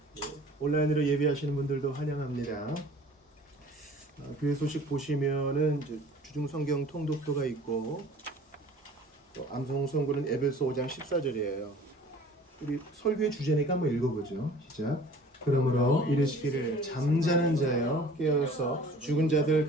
온라인으로 예배하시는 분들도 환영합니다. 교회 소식 보시면은 주중 성경 통독도가 있고 또 암송 선고는 에베소 5장 14절이에요. 우리 설교의 주제니까 한번 읽어보죠. 시작. 그러므로 이르시기를 잠자는 자여 깨어서 죽은 자들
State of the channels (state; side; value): normal; both; correlation 0.48